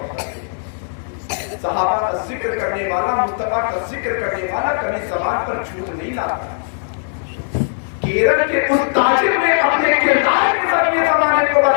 ہے؟ صحابہ کا ذکر کرنے والا، مصطفیٰ کا ذکر کرنے والا کبھی زبان پر جھوٹ نہیں لاتا۔ کیرل کے اس تاجر نے اپنے کردار کے ذریعے زمانے کو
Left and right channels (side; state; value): right; silent; digital silence